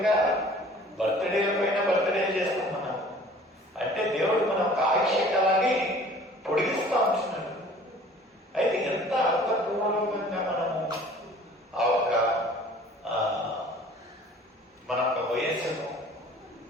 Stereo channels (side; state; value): both; normal; correlation 0.49